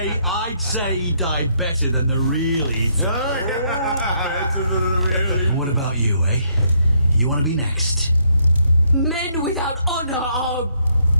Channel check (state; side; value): inverted; both; correlation -0.72